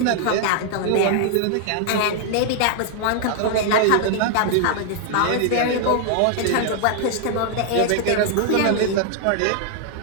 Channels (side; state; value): both; different; correlation 0.00